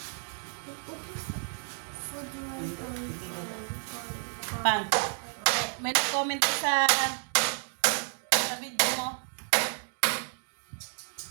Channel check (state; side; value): silent; left; 57 dB below the other